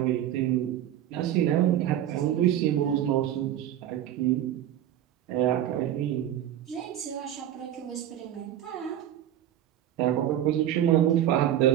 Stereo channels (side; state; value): left; quieter; 11.6 dB